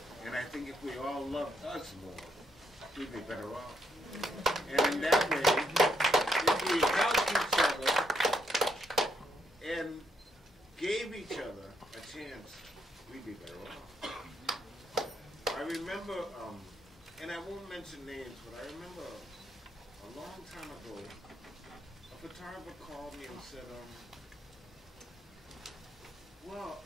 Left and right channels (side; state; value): both; normal; correlation 0.76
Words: And I think if we all loved us more, we'd be better off. And in that way, if we helped each other and gave each other a chance, we'd be better off. I remember, and I won't mention names, but I remember a long time ago, a photographer called me and said, well,